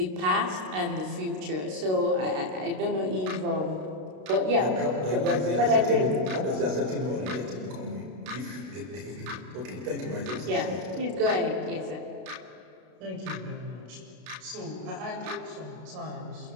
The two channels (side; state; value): left; late; 32 ms